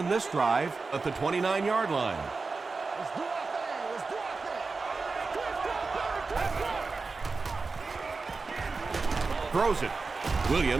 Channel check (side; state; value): left; quieter; 4.1 dB